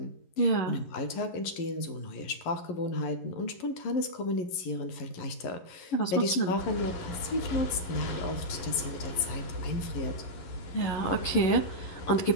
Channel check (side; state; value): right; late; 11 ms